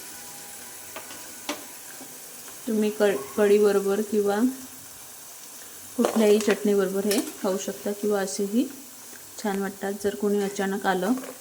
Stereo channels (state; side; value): identical; both; correlation 1.00